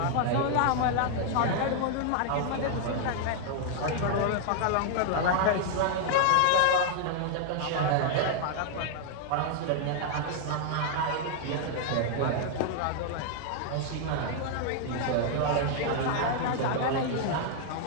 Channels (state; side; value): different; both; correlation 0.00